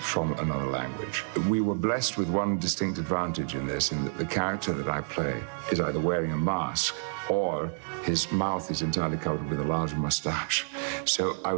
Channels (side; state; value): left; silent; digital silence